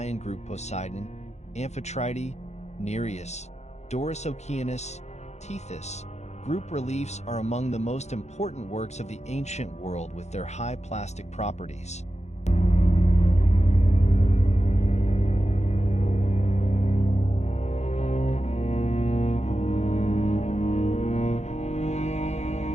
group Poseidon, Amphitrite, Nereus, Doris Oceanus, Tethys. Group reliefs are among the most important works of the ancient world with their high plastic properties.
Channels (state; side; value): late; right; 0.33 ms